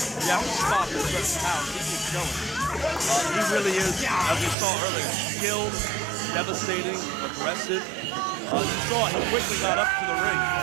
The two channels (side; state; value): left; drops out; at 4.5 s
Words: you have to stop at certain pounds. He keeps going. He really is, as we saw earlier, skilled, devastating, aggressive. You saw he quickly got up to the ring.